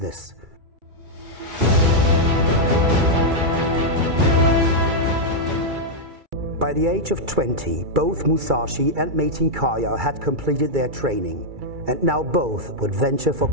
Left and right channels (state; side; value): late; left; 2.3 ms